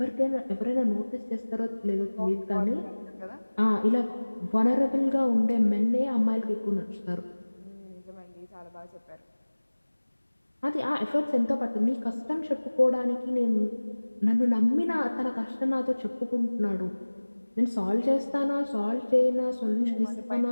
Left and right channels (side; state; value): both; inverted; correlation -1.00